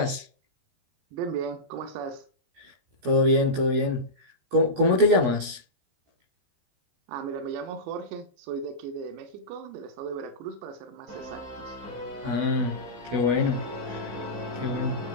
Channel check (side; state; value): left; late; 16 ms